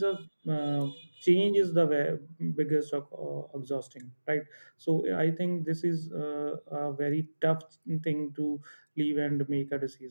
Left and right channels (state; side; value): inverted; both; correlation -1.00